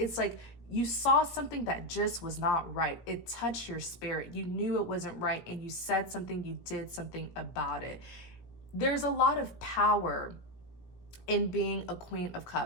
like you saw something that just was not right. It touched your spirit. You knew it wasn't right, and you said something, you did something about it. There's a lot of power in being a Queen of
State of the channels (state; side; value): late; right; 17 ms